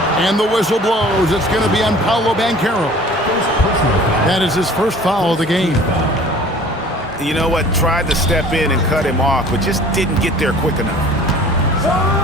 And the whistle blows. It's going to be on Paolo Banchero. That is his first foul of the game. You know what? Tried to step in and cut him off, but just didn't get there quick enough.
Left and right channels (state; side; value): normal; both; correlation 0.48